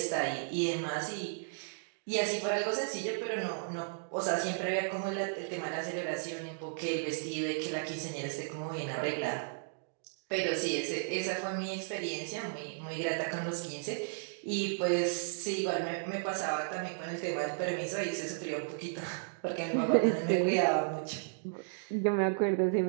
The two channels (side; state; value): left; silent; digital silence